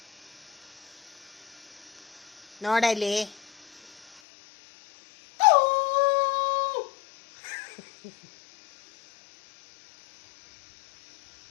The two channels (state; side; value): drops out; right; at 4.2 s